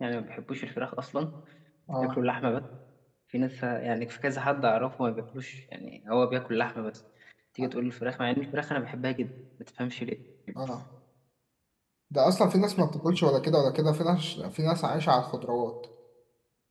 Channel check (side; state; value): both; identical; correlation 1.00